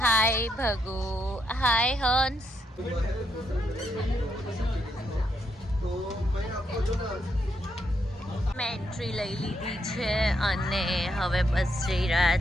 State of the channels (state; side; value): normal; both; correlation 0.78